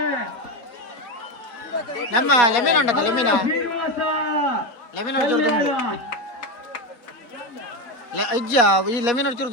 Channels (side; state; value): right; late; 4.0 ms